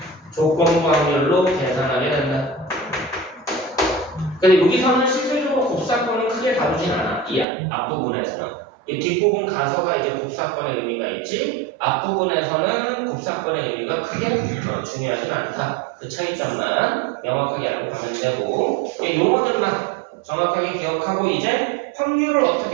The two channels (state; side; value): drops out; left; at 7.5 s